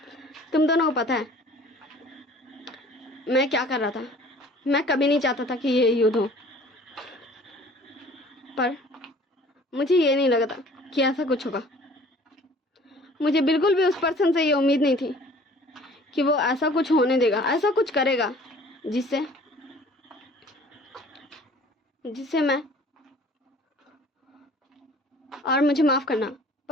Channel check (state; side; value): normal; both; correlation 0.51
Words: तुम दोनों को पता है मैं क्या कर रहा था? मैं कभी नहीं चाहता था कि ये युद्ध हो, पर मुझे ये नहीं लगा था कि ऐसा कुछ होगा। मुझे बिल्कुल भी उस पर्सन से ये उम्मीद नहीं थी कि वो ऐसा कुछ होने देगा, ऐसा कुछ करेगा जिससे मैं, और मुझे माफ़ करना